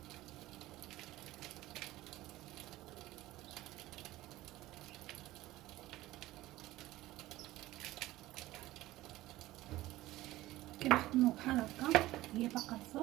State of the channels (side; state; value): left; quieter; 16.8 dB